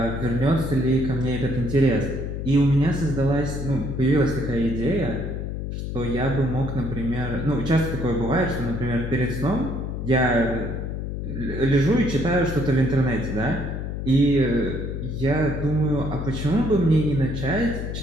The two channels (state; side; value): noise; left; hum, 5 dB below the sound